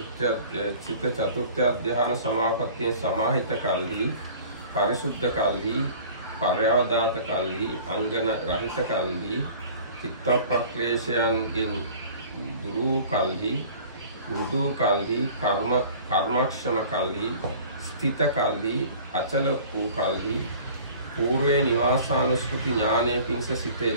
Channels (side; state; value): both; inverted; correlation -0.46